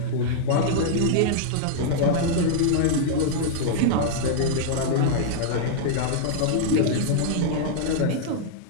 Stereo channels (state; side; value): different; both; correlation -0.01